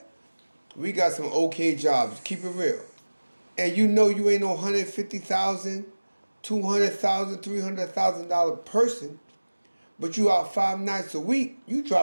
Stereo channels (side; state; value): both; inverted; correlation -1.00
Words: we got some okay jobs. Keep it real. And you know you ain't no $150,000, $200,000, $300,000 person, but you out 5 nights a week. You